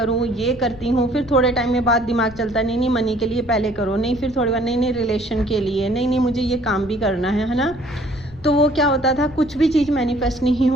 ये करती हूँ। फिर थोड़े टाइम में बाद दिमाग चलता है नहीं मनी के लिए पहले करो, नहीं फिर थोड़ी बार नहीं रिलेशन के लिए, नहीं मुझे ये काम भी करना है ना। तो वो क्या होता था, कुछ भी चीज़ मैनिफेस्ट नहीं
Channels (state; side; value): noise; left; rumble, 19 dB below the sound